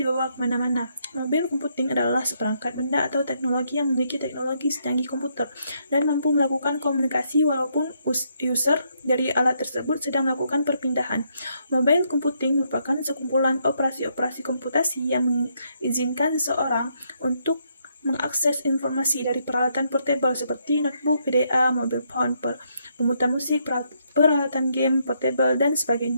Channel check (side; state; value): both; inverted; correlation -0.75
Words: kemana-mana. Mobil computing adalah seperangkat benda atau teknologi yang memiliki teknologi secanggih komputer dan mampu melakukan komunikasi walaupun user dari alat tersebut sedang melakukan perpindahan. Mobile computing merupakan sekumpulan operasi-operasi komputasi yang mengizinkan seseorang untuk mengakses informasi dari peralatan portable seperti notebook, PDA, mobile phone, pemutar musik, peralatan game, portable, dan